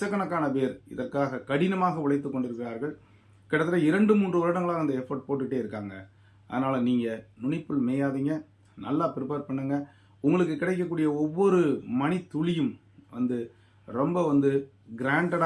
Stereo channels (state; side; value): identical; both; correlation 1.00